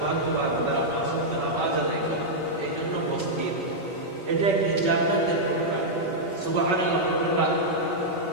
তারা পাঁচ ওয়াক্ত নামাজ আদায় করে। এই জন্য মসজিদ এটা একটি জান্নাতের টুকরা। সুবহানাল্লাহ।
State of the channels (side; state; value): left; late; 5.3 ms